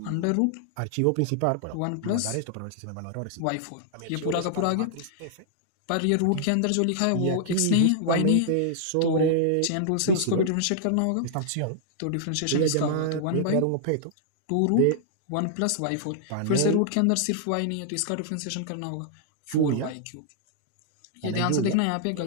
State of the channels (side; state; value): both; different; correlation -0.01